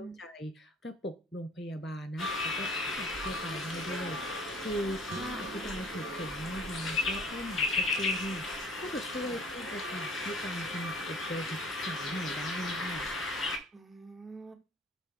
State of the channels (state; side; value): normal; both; correlation 0.48